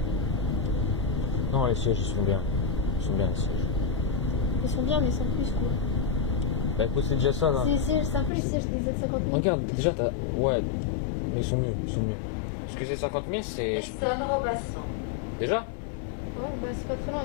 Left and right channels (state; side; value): drops out; right; at 8.3 s